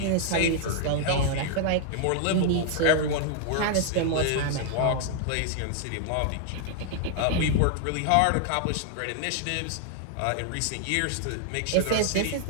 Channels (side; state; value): both; different; correlation 0.00